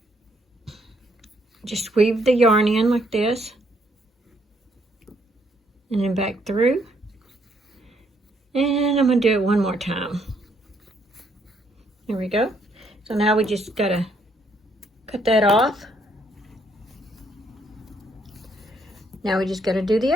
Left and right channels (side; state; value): both; normal; correlation 0.71